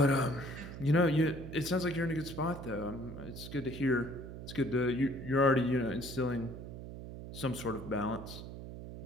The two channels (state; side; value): noise; right; hum, 10 dB below the sound